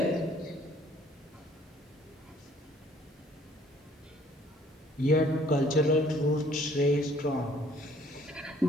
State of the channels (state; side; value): normal; both; correlation 0.59